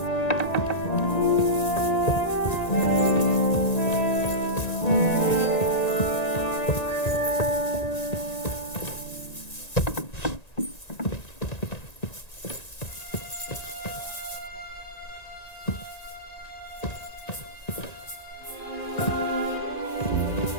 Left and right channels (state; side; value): late; right; 1.9 ms